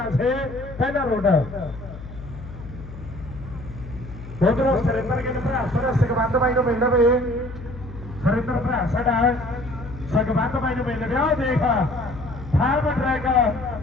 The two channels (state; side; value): noise; left; hum, 13 dB below the sound